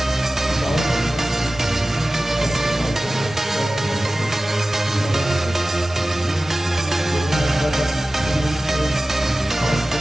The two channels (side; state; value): both; normal; correlation 0.96